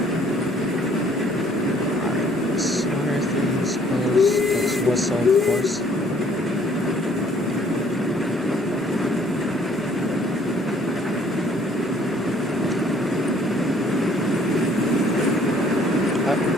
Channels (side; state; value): both; normal; correlation 0.60